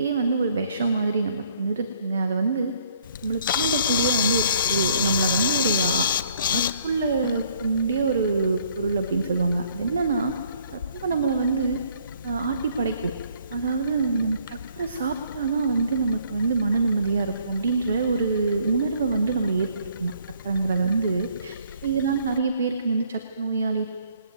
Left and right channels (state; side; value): inverted; both; correlation -0.62